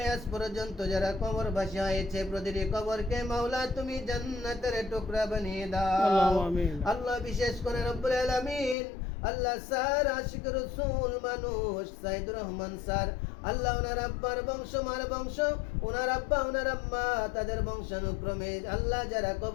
আজ পর্যন্ত যারা কবরবাসী হয়েছে প্রতিটি কবরকে মাওলা তুমি জান্নাতের টুকরা বানিয়ে দাও আল্লাহ বিশেষ করে রব্বুল আলামিন আল্লাহ স্যার আশিক রসুল মানুষ সাইদুর রহমান স্যার আল্লাহ ওনার আব্বার বংশ মার বংশ ওনার আব্বা ওনার আম্মা তাদের বংশানুক্রমে আল্লাহ যারা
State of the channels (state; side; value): drops out; right; at 8.8 s